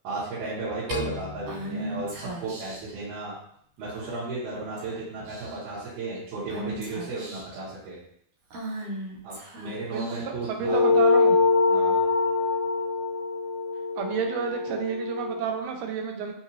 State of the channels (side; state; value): left; late; 12 ms